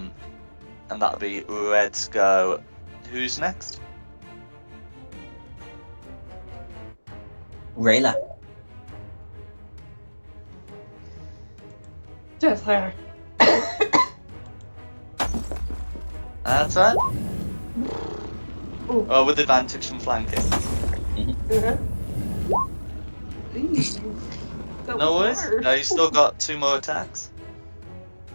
that'll be Red's go. Who's next? Rayla. Just her. That's right. Ooh. Oh, with advantage from flanking. Uh-huh. Eee, that No was worries. hard. No, you still got 2 more attacks.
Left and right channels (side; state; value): both; inverted; correlation -1.00